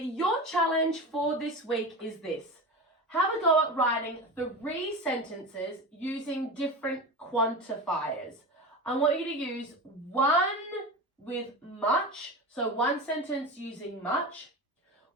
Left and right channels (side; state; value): both; normal; correlation 0.26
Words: challenge for this week is this. Have a go at writing 3 sentences using different quantifiers. I want you to use one with much, so one sentence using much,